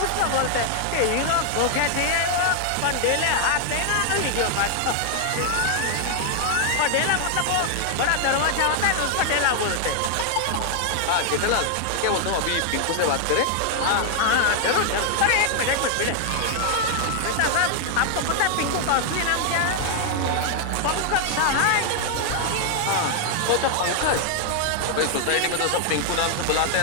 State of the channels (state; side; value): different; both; correlation 0.00